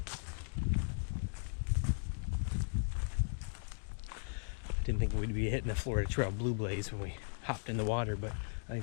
Didn't think we'd be hitting the Florida Trail blue blaze when we hopped in the water, but I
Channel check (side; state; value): right; silent; digital silence